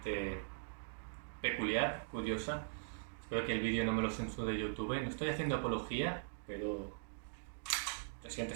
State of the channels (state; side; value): silent; left; digital silence